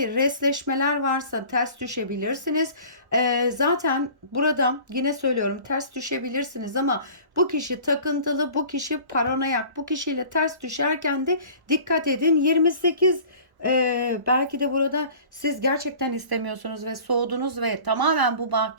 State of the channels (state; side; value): late; left; 1.1 ms